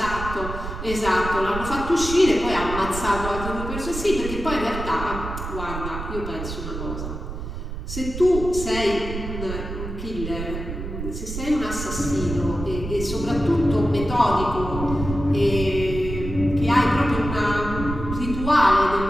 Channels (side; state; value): right; noise; rumble, 7 dB below the sound